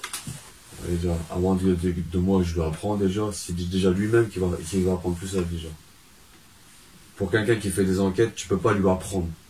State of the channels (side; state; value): both; identical; correlation 1.00